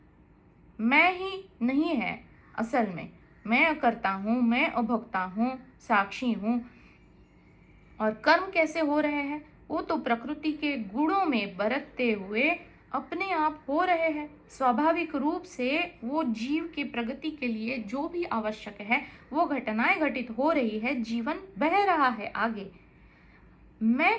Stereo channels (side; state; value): both; identical; correlation 1.00